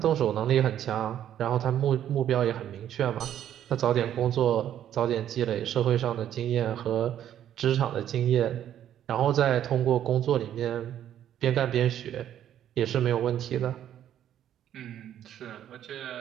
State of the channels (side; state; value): left; quieter; 10.8 dB